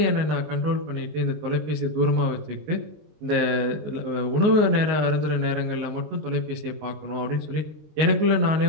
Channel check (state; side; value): late; left; 19 ms